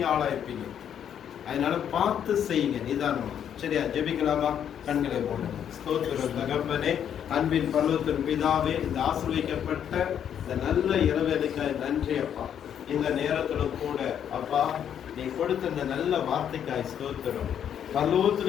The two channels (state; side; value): quieter; right; 9.1 dB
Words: ஆளாயிருப்பீங்க. அதனால பார்த்து செய்யுங்க நிதானமா. சரியா? ஜெபிக்கலாமா? கண்களை போடுங்க. ஸ்தோத்திரம் தகப்பனே, அன்பின் பரலோகத்தின் பிதாவே, இந்த ஆசீர்வதிக்கப்பட்ட இந்த நல்ல இரவேலைக்காய் நன்றி அப்பா. இந்த நேரத்துல கூட அப்பா நீ கொடுத்த இந்த நல்ல வார்த்தைக்காய் ஸ்தோத்திரம். பரலோகத்தில்